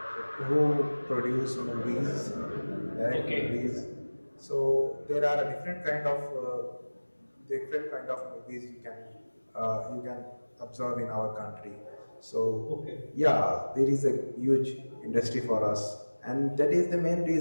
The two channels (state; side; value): inverted; both; correlation -1.00